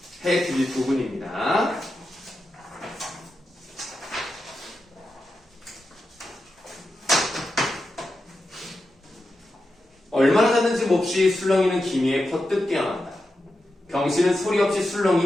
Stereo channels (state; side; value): normal; both; correlation 0.89